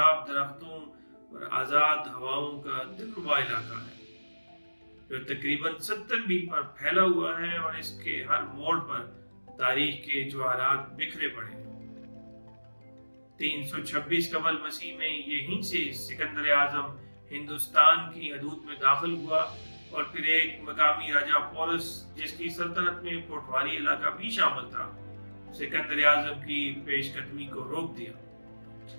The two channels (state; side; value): inverted; both; correlation -1.00